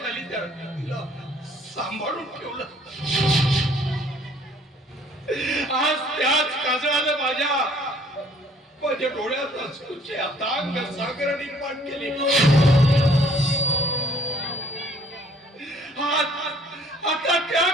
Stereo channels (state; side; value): normal; both; correlation 0.59